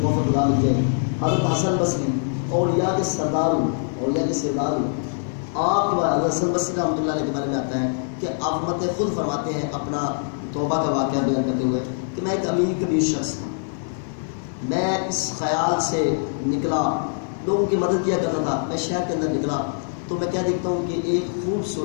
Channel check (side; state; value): right; silent; 63 dB below the other